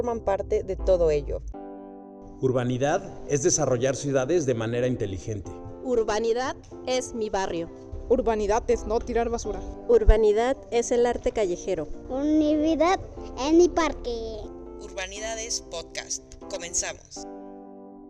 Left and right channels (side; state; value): both; identical; correlation 1.00